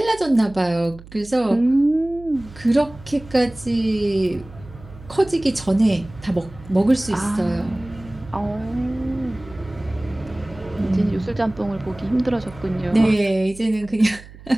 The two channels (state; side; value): noise; right; hum, 19 dB below the sound